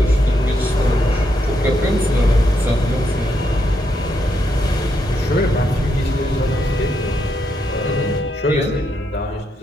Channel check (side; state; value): both; normal; correlation 0.79